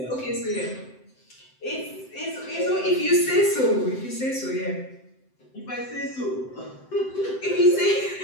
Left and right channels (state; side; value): late; right; 7.8 ms